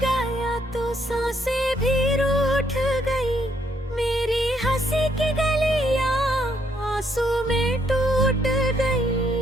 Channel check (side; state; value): both; normal; correlation 0.72